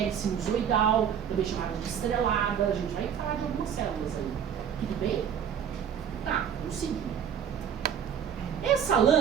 sinusoidal, também chamada de estrelada. A gente vai falar de algumas células aí. Tudo bem? Tá, vamos seguir. Essa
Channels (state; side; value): quieter; left; 8.3 dB